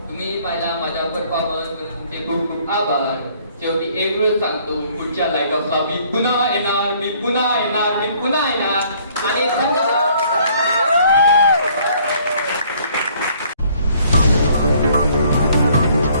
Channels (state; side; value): inverted; both; correlation -0.61